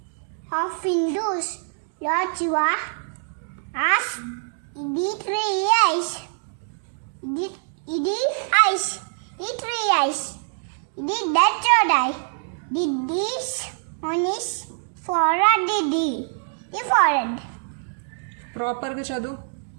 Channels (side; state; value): left; silent; digital silence